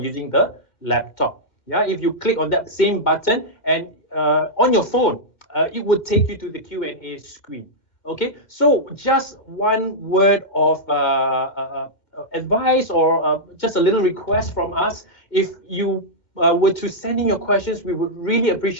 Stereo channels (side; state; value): right; late; 2.1 ms